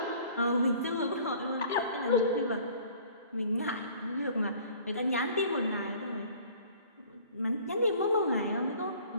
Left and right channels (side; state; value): both; inverted; correlation -0.50